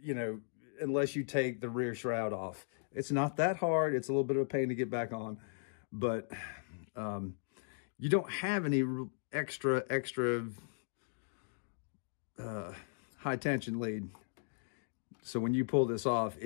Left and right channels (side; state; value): right; silent; digital silence